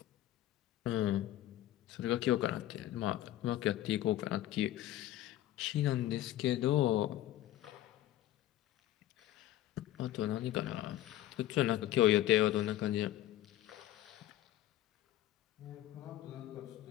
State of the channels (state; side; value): quieter; right; 13.6 dB